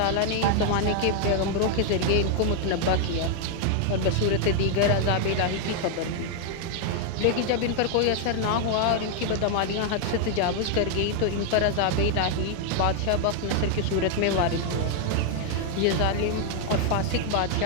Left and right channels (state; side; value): different; both; correlation 0.00